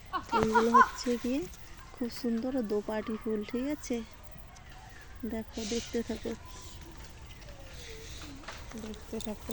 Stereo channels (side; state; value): both; identical; correlation 1.00